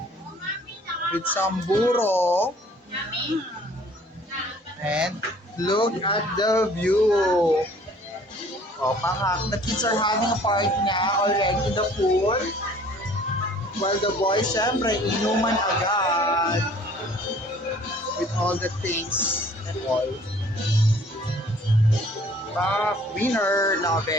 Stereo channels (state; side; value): normal; both; correlation 0.53